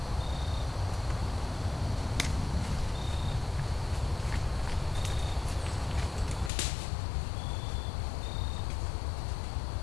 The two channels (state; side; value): drops out; right; at 6.5 s